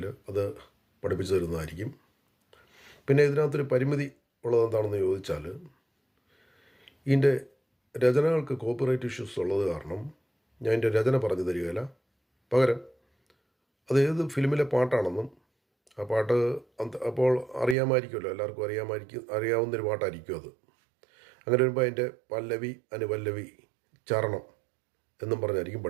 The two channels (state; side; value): drops out; left; at 17.8 s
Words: അത് പഠിപ്പിച്ചു തരുന്നതായിരിക്കും. പിന്നെ ഇതിനകത്തൊരു പരിമിതി ഉള്ളത് എന്താണെന്ന് ചോദിച്ചാൽ, ഇതിൻ്റെ രചനകൾക്ക് കോപ്പിറൈറ്റ് ഇഷ്യൂസ് ഉള്ളത് കാരണം ഞാൻ എൻ്റെ രചന പറഞ്ഞു തരികയില്ല. പകരം അത് ഏത് ഫിലിമിലെ പാട്ടാണെന്നും ആ പാട്ട് അപ്പോൾ അറിയാമായിരിക്കുമല്ലോ, എല്ലാവർക്കും അറിയാവുന്നൊരു പാട്ടായിരിക്കും അത്. അങ്ങനെ വരുമ്പോൾ അതിൻ്റെ പല്ലവി, അനുപല്ലവി, ചരണം എന്നും പറഞ്ഞായിരിക്കും